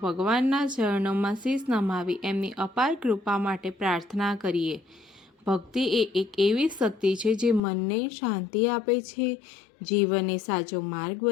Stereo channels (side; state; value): right; drops out; at 7.6 s